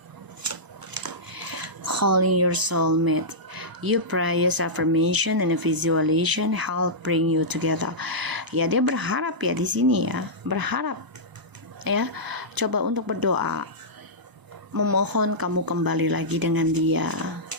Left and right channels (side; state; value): left; late; 1.0 ms